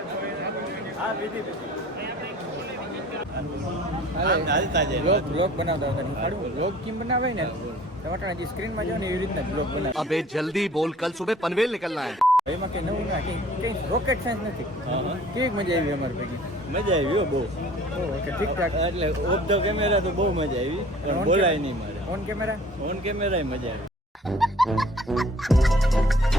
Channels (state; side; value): normal; both; correlation 0.51